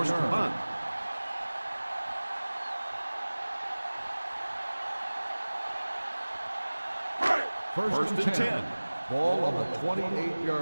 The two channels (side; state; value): both; inverted; correlation -1.00